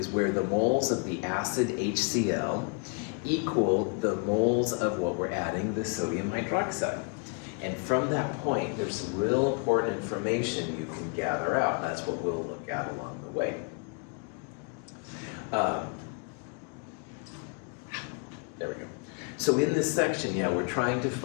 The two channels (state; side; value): quieter; right; 36.1 dB